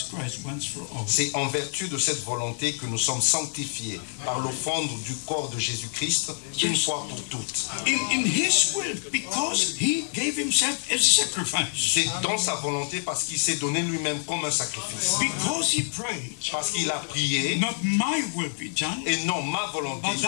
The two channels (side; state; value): right; silent; digital silence